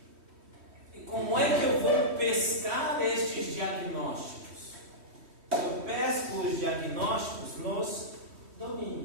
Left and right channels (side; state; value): left; late; 3.1 ms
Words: E como é que eu vou pescar estes diagnósticos? Eu pesco os diagnósticos nos